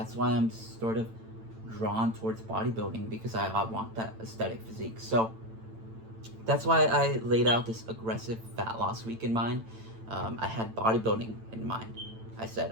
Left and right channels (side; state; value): left; late; 8.9 ms